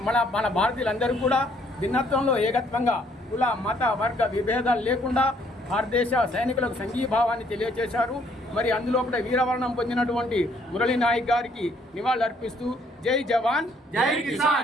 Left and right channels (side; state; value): both; normal; correlation 0.66